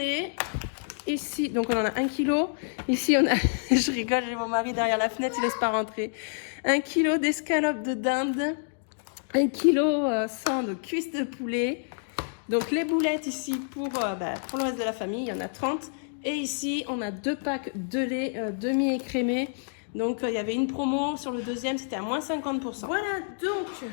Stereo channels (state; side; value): silent; right; digital silence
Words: Ici, donc on en a 1 kg. Ici on a, je rigole, j'ai mon mari derrière la fenêtre, il laisse pas rentrer. 1 kg d'escalope de dinde, 1 kg 100 de cuisse de poulet. Donc les boulettes ici pour le reste de la famille, il y en a 30. Et ici on a 2 packs de lait demi-écrémé. Donc il y avait une promo sur le deuxième, c'était à moins 50%. Voilà donc